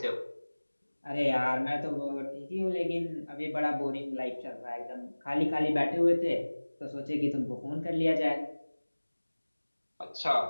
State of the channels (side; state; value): both; inverted; correlation -1.00